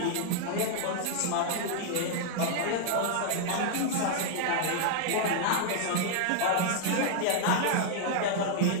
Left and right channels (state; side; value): different; both; correlation -0.01